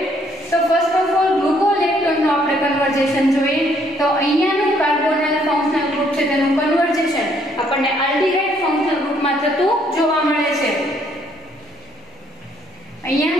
તો ફર્સ્ટ ઓફ ઓલ ગ્લુકોલેક્ટોનનું આપણે કન્વર્ઝેશન જોઈએ. તો અહીંયાનું કાર્બોનાઇલ ફંક્શનલ ગ્રુપ છે તેનું કન્વર્ઝેશન આપણને આલ્ડીહાઇડ ફંક્શનલ ગ્રુપમાં થતું જોવા મળે છે.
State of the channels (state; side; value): normal; both; correlation 0.67